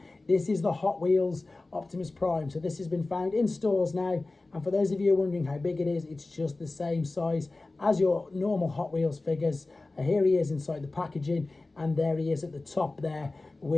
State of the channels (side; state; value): right; quieter; 3.2 dB